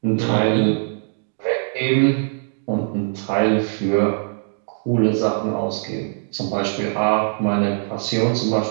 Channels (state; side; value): silent; left; digital silence